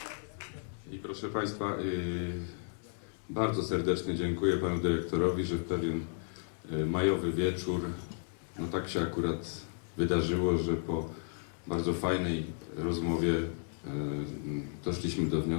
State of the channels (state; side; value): silent; right; 55 dB below the other